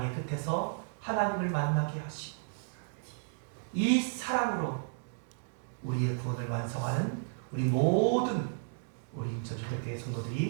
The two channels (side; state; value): left; silent; digital silence